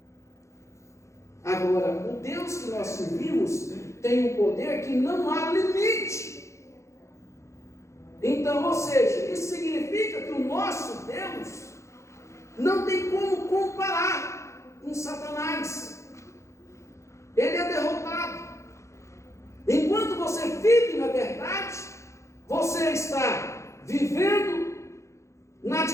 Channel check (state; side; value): late; right; 0.14 ms